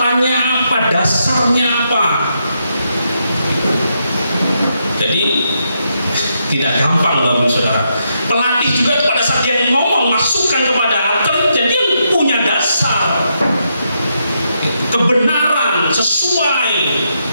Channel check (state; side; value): inverted; both; correlation -0.80